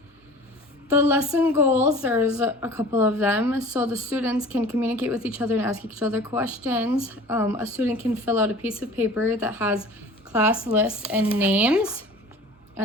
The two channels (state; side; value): normal; both; correlation 0.43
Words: The lesson goals, there's a couple of them, so the students can communicate with each other and ask each other questions. A student can fill out a piece of paper that has class lists and names,